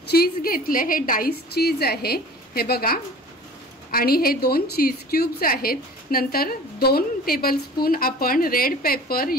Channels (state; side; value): normal; both; correlation 0.43